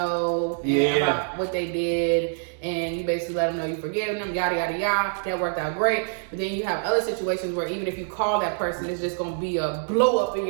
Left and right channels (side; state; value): left; silent; digital silence